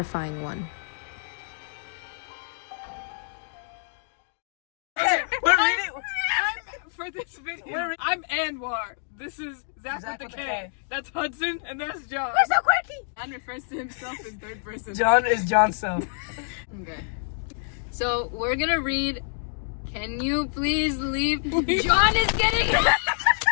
one. For this video, I'm Anwar. This is Zach with the K. That's Hudson, and that's John. We're so quirky! John refers to himself in third person. John is Johnson. Okay. So we're gonna read. Can you please leave? John is getting.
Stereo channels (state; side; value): silent; right; digital silence